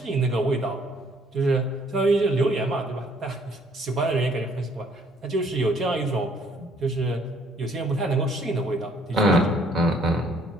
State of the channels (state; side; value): normal; both; correlation 0.62